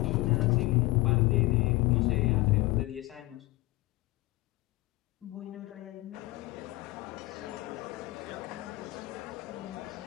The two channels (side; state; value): right; quieter; 20.5 dB